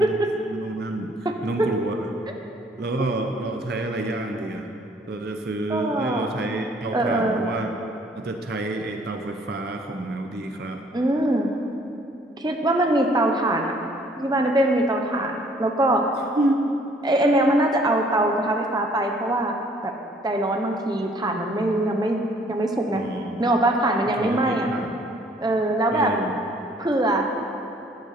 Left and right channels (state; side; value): normal; both; correlation 0.60